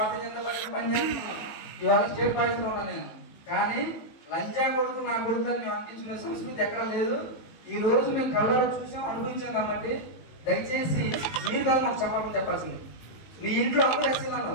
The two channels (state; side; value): late; right; 18 ms